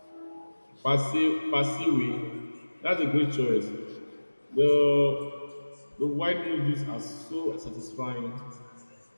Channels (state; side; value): inverted; both; correlation -1.00